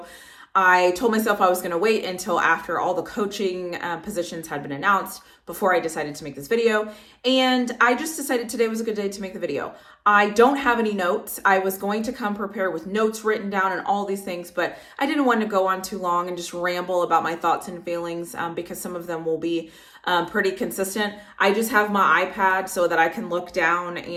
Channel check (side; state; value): both; identical; correlation 1.00